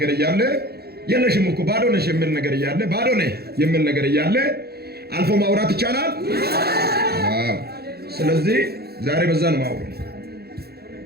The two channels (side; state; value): left; late; 0.46 ms